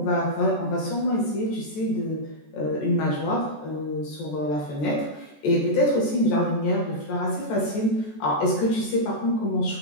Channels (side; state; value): right; late; 14 ms